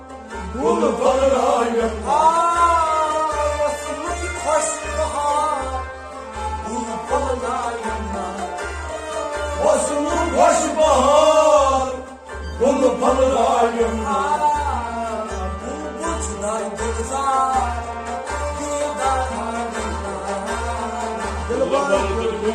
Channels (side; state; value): both; identical; correlation 1.00